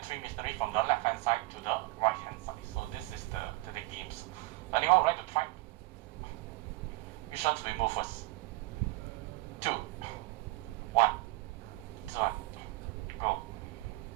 3 missionaries from the left hand side to the right hand side. So this is the games. Anyone would like to try? Which ones we move first? 2, 1, this one, go.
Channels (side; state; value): left; quieter; 21.3 dB